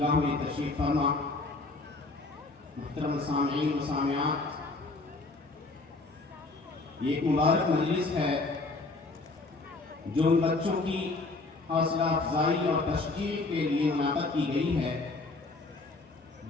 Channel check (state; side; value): quieter; right; 3.4 dB